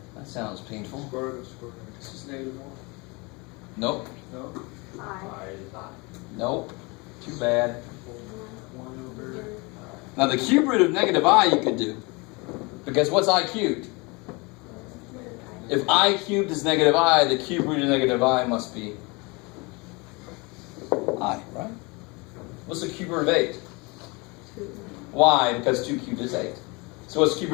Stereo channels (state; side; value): quieter; right; 27.4 dB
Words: That sounds painful. Square root of square root. This is -1. Nope. No? I. Nope. Too bad. 1 over. Now the cube root of negative I you could do. Because what's I cubed? If I cubed is negative I, the cube root of negative I must be I, right? What's the cube root of 8? 2. Why? Because 2 cubed is 8. So what's the cube